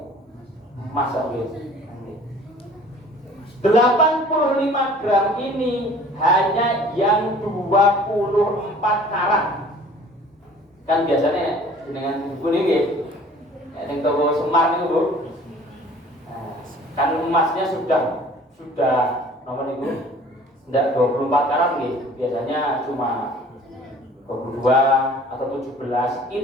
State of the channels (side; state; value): both; normal; correlation 0.50